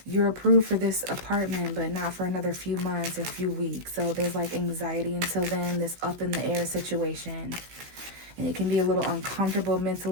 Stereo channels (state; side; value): late; left; 16 ms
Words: you're approved for this apartment, but not for another few months or few weeks. So there's like anxiety until then, this up in the air situation. And it can be a little uncomfortable